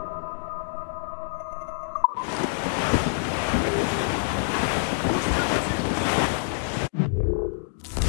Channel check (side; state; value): right; silent; digital silence